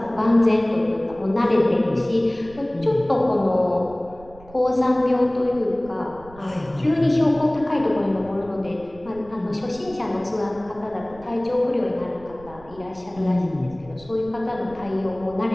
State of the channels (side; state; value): right; noise; rumble, 21 dB below the sound